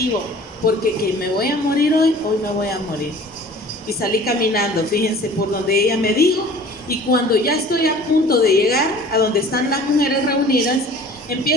porque que me voy a morir hoy me voy a morir. Y salí caminando, fíjense, por donde ella me dijo, y cuando ya estoy a punto de llegar a donde están las mujeres reunidas,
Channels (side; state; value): both; normal; correlation 0.46